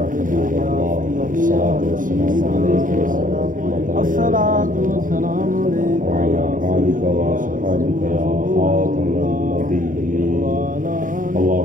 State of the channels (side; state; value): left; late; 0.39 ms